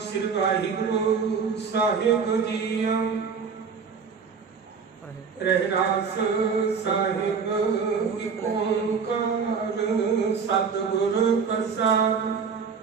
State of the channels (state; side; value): quieter; left; 5.8 dB